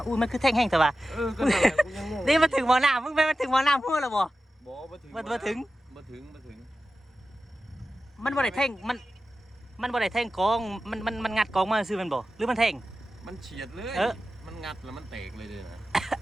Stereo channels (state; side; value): normal; both; correlation 0.93